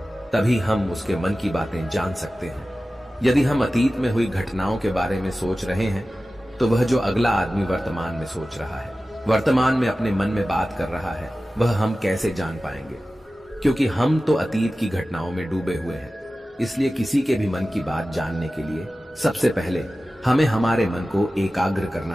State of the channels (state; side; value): normal; both; correlation 0.95